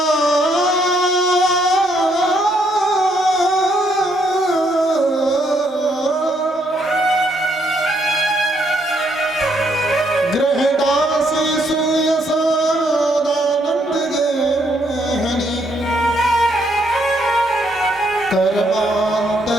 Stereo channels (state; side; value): normal; both; correlation 0.72